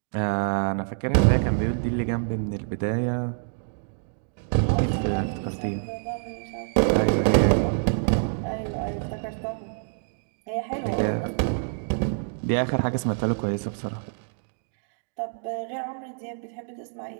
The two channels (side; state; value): left; silent; digital silence